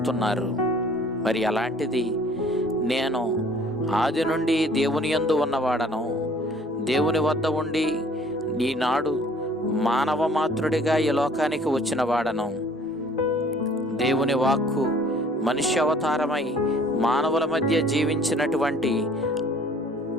మరి అలాంటిది నేను ఆది నుండి దేవుని యందు ఉన్నవాడను, దేవుని వద్ద ఉండి ఈనాడు మానవ మాతృడిగా ఈ లోకానికి వచ్చిన వాడను. దేవుని వాక్కు మనుష్య అవతారమై మానవుల మధ్య జీవించినటువంటి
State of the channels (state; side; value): normal; both; correlation 0.54